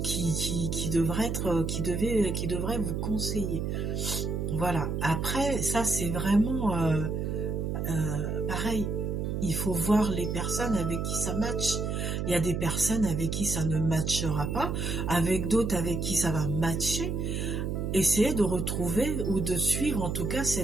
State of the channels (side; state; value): right; noise; hum, 1 dB below the sound